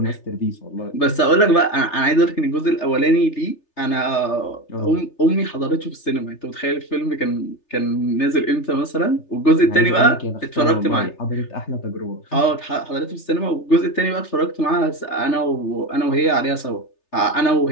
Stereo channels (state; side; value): late; right; 3.3 ms